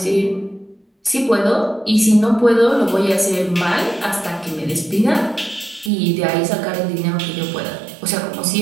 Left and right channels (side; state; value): left; drops out; at 5.9 s